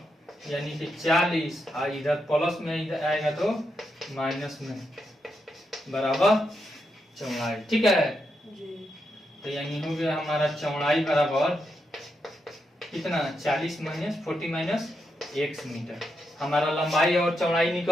यानी कि 40, और इधर प्लस में इधर आएगा तो माइनस में बराबर चौड़ाई, ठीक है। तो यानी हो गया हमारा चौड़ाई बराबर कितना 40 माइनस 40 माइनस x मीटर। हमारा लंबाई और चौड़ाई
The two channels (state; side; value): normal; both; correlation 0.83